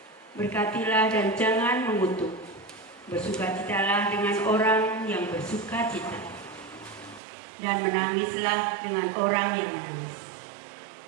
Berkatilah dan jangan mengutuk. Bersukacitalah dengan orang yang bersukacita, dan menangislah dengan orang yang menangis.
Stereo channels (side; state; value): left; drops out; at 7.2 s